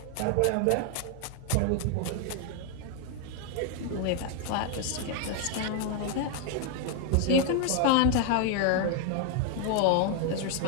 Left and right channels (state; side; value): different; both; correlation 0.00